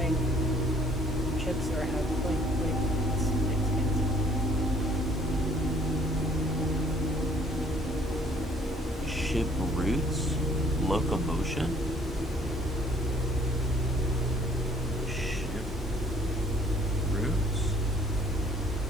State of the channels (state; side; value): noise; left; hiss, 27 dB below the sound